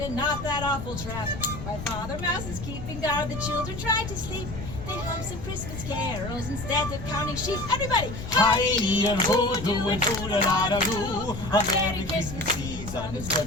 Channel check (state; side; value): noise; left; rumble, 9 dB below the sound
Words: and not that awful trap. While Father Mouse is keeping guard, the children try to sleep. They hum some Christmas carols instead of counting sheep. Everybody! Hi and ho, do and do-da-da-da-do. A Merry Christmas season is good